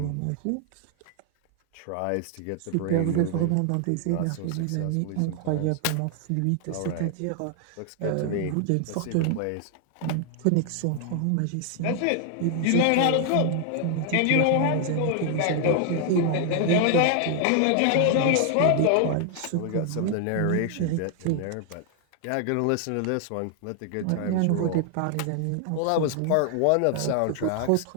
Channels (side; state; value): both; different; correlation 0.00